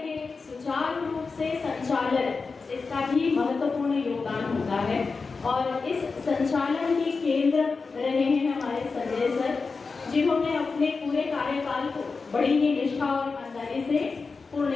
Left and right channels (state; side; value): quieter; right; 4.5 dB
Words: सुचारू रूप से संचालन, इसका भी महत्वपूर्ण योगदान होता है। और इस संचालन के केंद्र रहे हैं हमारे संजय सर, जिन्होंने अपने पूरे कार्यकाल को बड़ी ही निष्ठा और ईमानदारी से पूर्ण